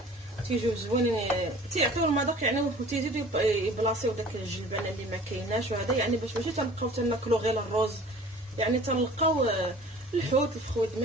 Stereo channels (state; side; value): normal; both; correlation 0.47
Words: تيجيو زوينين تيعطيو المذاق يعني وتيزيدوا يبلاصيو داك الجلبانه اللي ما كايناش وهذا يعني باش ماشي تنبقاو تناكلو غير الرز يعني تنلقاو الحوت الفخوي